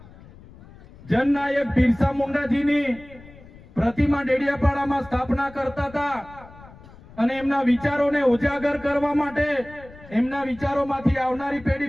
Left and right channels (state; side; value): noise; left; rumble, 21 dB below the sound